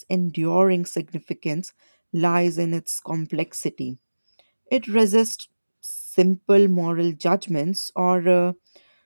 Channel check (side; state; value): both; inverted; correlation -1.00